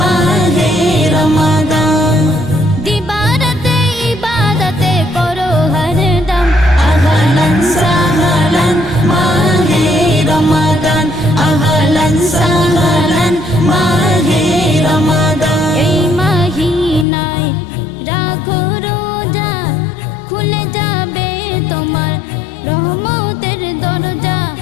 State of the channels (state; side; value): drops out; right; at 17.1 s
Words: Ramadan. Dibarate ibadate koro hardam, ahlan sahlan mahe Ramadan, ahlan sahlan mahe Ramadan. Ei mahinay rakho roja, khule jabe tomar রহমতের দরজা।